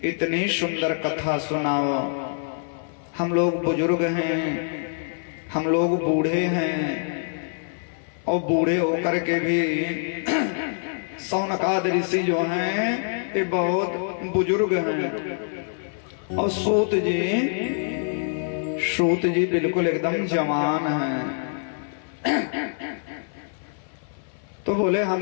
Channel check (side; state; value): right; silent; 56 dB below the other